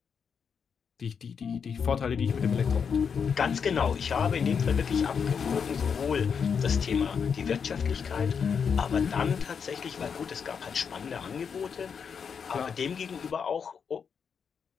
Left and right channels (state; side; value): quieter; right; 6.6 dB